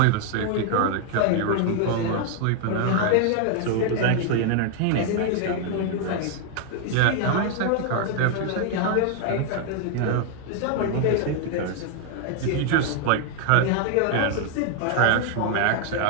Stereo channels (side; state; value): both; different; correlation 0.00